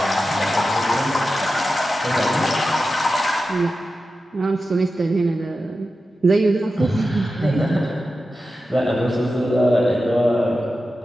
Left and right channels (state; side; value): normal; both; correlation 0.92